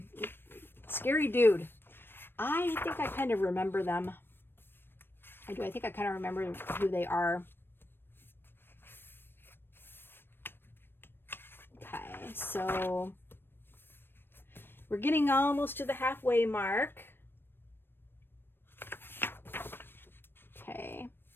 scary dude. I think I kind of remember them. I do. I think I kind of remember who they are. Okay, so we're getting almost to the halfway mark. Okay.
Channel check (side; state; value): right; late; 0.10 ms